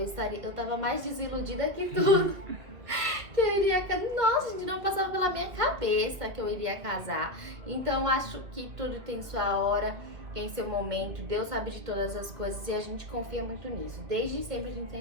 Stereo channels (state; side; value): late; left; 2.5 ms